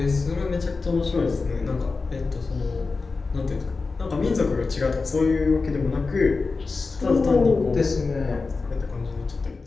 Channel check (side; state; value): right; quieter; 4.1 dB